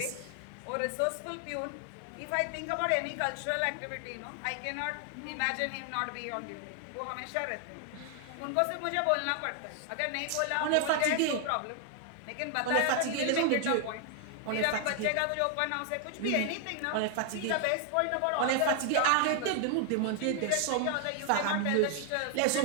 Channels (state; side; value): different; both; correlation 0.00